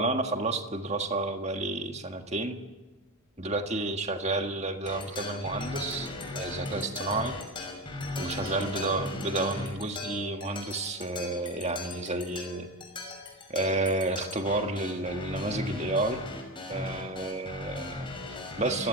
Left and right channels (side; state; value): both; normal; correlation 0.20